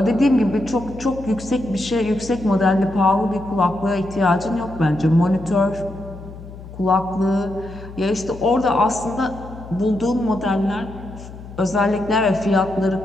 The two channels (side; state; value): left; noise; hum, 15 dB below the sound